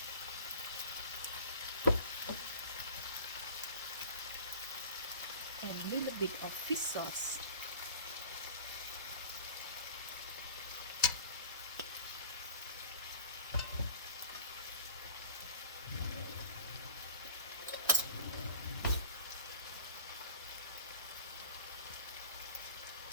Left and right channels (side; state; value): both; inverted; correlation -0.43